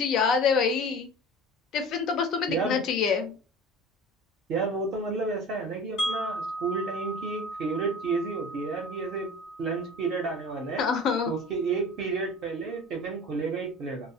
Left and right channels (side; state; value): both; normal; correlation 0.39